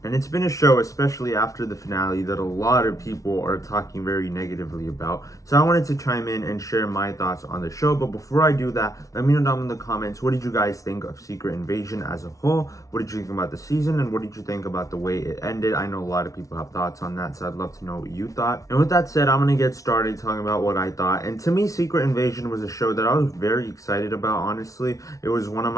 and it's been a show, especially after the finale, that a lot of people are talking very negatively about. So I wanted to chime in and share my thoughts on the show, but before I do that, let me know down in the comments, what did you guys think of Secret Invasion as a whole? What did you think about the season, and what did you think about the way it ended? I know a lot of people have thoughts on that, so I'd love to know what you thought. And with that said, I'm going to get started talking about what I thought. And to me, Secret Invasion was a show that I was very excited about, honestly. It was one of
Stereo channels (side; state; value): right; late; 0.16 ms